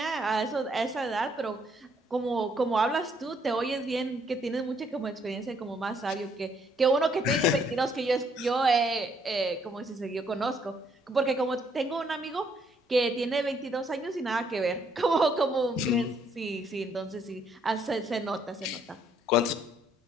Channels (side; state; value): both; normal; correlation 0.69